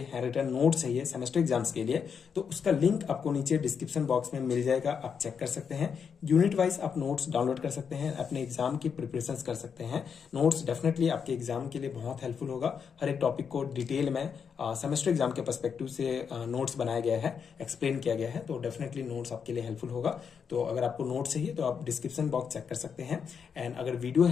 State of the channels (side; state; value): right; quieter; 6.7 dB